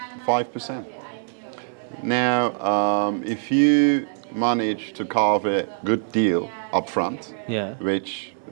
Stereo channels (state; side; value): silent; left; digital silence